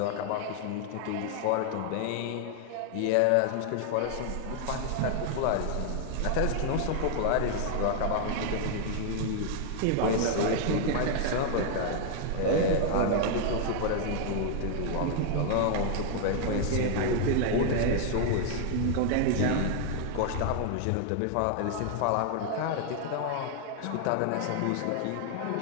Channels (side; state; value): both; different; correlation 0.00